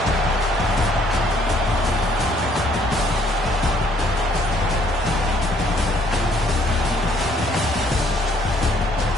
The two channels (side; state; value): both; normal; correlation 0.64